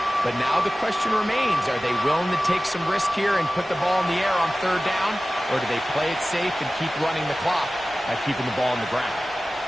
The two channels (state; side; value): normal; both; correlation 0.97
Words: But now the question remains, are they willing to take some risk here and put the ball in the air on 3rd down? Or do they play it safe and keep running the clock by keeping the ball on the ground?